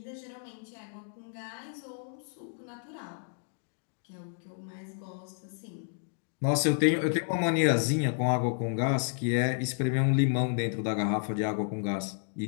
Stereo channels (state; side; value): silent; right; 57 dB below the other